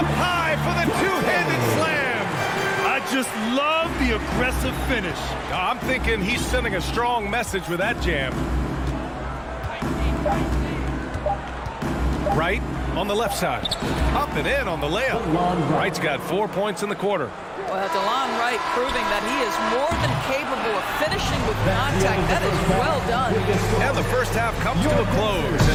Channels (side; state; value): both; identical; correlation 1.00